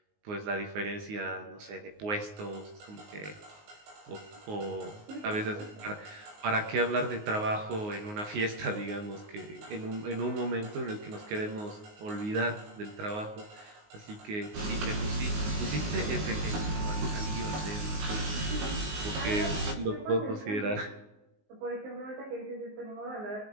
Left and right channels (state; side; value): late; left; 19 ms